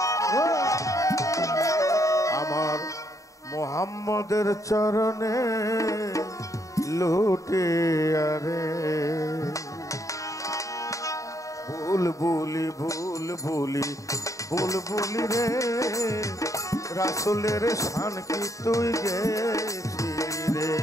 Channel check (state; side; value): late; right; 0.16 ms